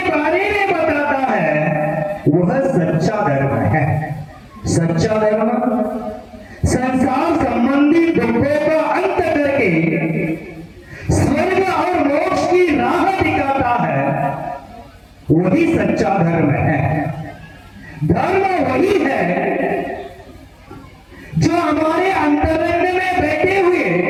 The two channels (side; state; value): both; identical; correlation 1.00